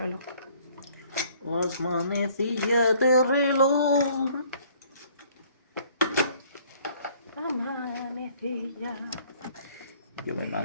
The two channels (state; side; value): inverted; both; correlation -0.59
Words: Las manecillas de reloj. Amanecilla. Yo me